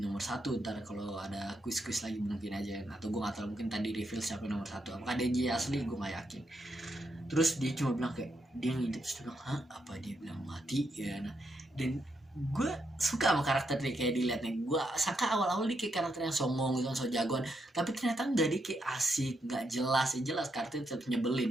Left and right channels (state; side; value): normal; both; correlation 0.80